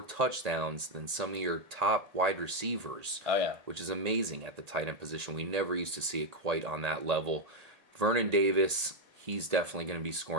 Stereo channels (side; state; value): left; late; 1.8 ms